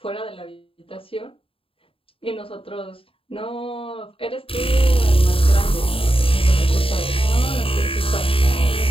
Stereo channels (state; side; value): late; right; 0.27 ms